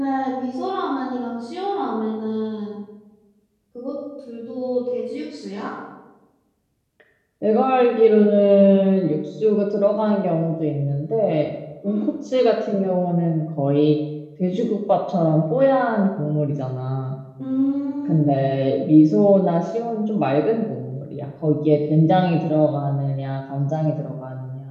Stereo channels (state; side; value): identical; both; correlation 1.00